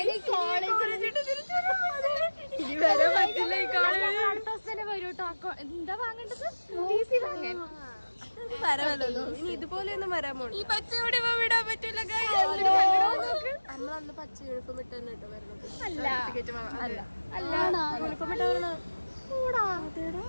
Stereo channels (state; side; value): inverted; both; correlation -1.00